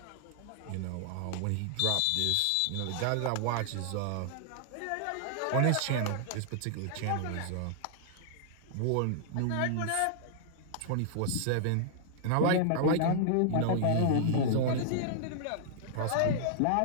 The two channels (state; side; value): different; both; correlation -0.01